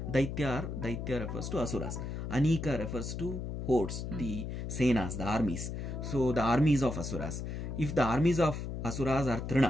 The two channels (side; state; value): left; noise; hum, 5 dB below the sound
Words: Daitya refers to asuras. Anika refers to hordes, the senas, the armies. So the armies of asuras. If the armies of asuras are